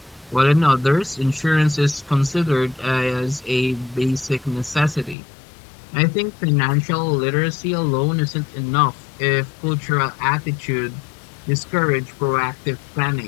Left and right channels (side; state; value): right; drops out; at 5.2 s